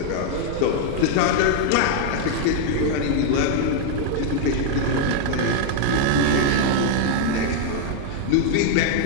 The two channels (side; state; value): both; different; correlation 0.00